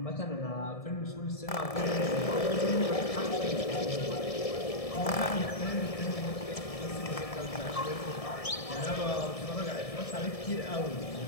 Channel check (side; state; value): right; late; 1.7 ms